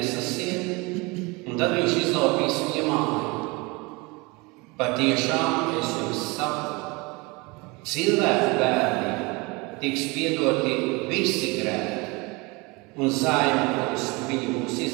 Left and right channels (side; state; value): left; quieter; 26.1 dB